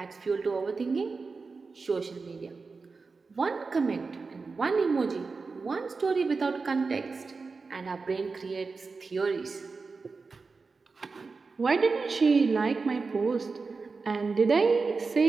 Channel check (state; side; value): quieter; left; 4.4 dB